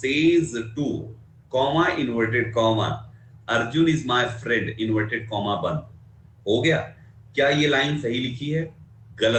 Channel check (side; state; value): both; identical; correlation 1.00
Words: two comma inverted comma Arjun is my friend inverted comma बंद, हो गया। क्या ये लाइन सही लिखी है?